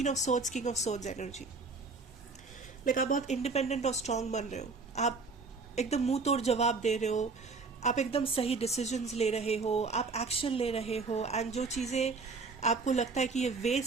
of Swords, King of Swords energy. Like आप बहुत इंडिपेंडेंट और स्ट्रांग बन रहे हो, आप एकदम मुंह तोड़ जवाब दे रहे हो, आप एकदम सही डिसीजंस ले रहे हो, आप एक्शन ले रहे हो, एंड जो चीज़ें आपको लगता है कि ये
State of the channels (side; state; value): left; quieter; 4.2 dB